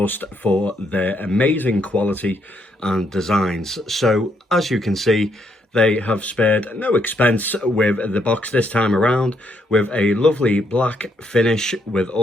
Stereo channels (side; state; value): both; normal; correlation 0.74